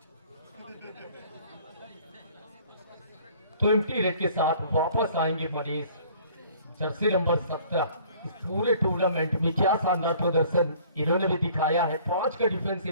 तो एम्प्टी रेड के साथ वापस आएंगे मनीष, जर्सी नंबर 17। इस पूरे टूर्नामेंट में क्या शानदार प्रदर्शन इन्होंने भी दिखाया है। 5 का डिफेंस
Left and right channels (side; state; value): both; inverted; correlation -0.54